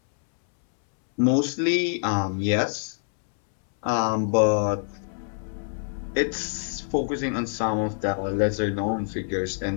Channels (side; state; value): right; silent; 61 dB below the other